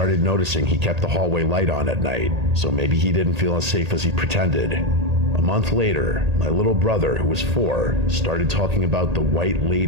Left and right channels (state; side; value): late; left; 1.8 ms